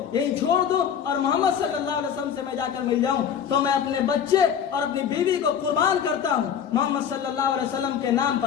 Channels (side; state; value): right; quieter; 8.2 dB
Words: یہی چھوڑ دوں اور محمد صلی اللہ علیہ وسلم سے میں جا کر مل جاؤں، تو میں اپنے بچے اور اپنی بیوی کو قربان کرتا ہوں محمد صلی اللہ علیہ وسلم کے نام